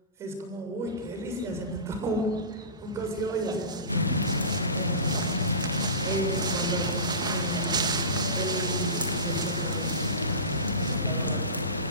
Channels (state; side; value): inverted; both; correlation -0.30